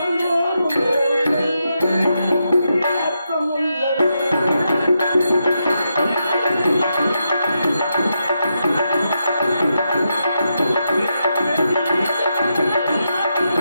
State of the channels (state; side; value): inverted; both; correlation -0.84